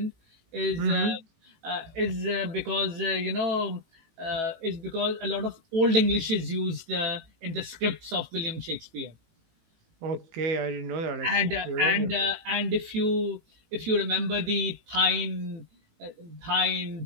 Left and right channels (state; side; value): late; left; 18 ms